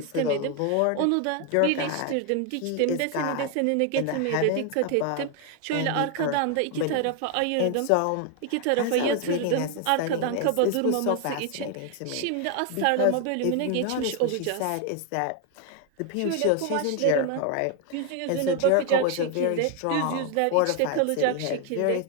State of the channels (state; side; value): different; both; correlation 0.01